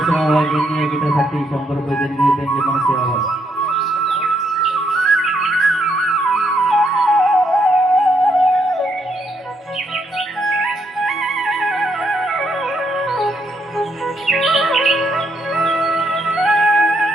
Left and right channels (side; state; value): both; normal; correlation 0.75